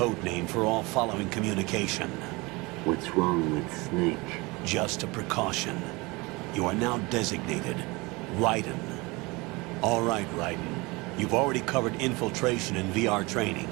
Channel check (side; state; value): left; quieter; 24.6 dB